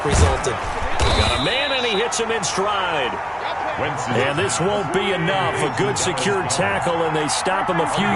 resulted. Got a man, and he hits him in stride. And this won't be enough. A good secured tackle, and they stop him a few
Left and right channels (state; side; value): identical; both; correlation 1.00